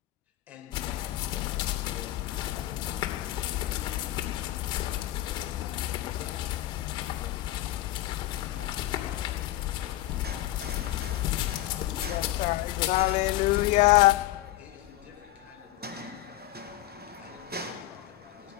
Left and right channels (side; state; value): right; quieter; 15.1 dB